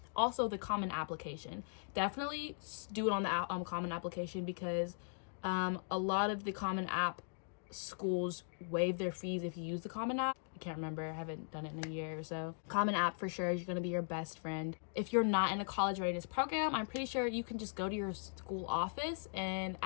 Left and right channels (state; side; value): silent; right; digital silence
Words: Also, the common application. Definitely do it on the common application, because a lot of the common app schools waive their fees if you use the common app. I can't remember, I haven't done it in a year or so. Common app for sure is going to be your best friend. If you're not in a college readiness program, I'm pretty sure you can just go to your school office and